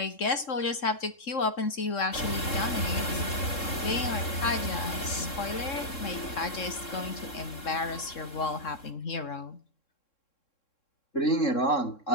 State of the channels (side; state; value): right; late; 3.7 ms